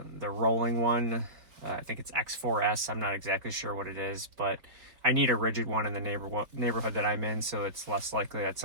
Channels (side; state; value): left; late; 4.2 ms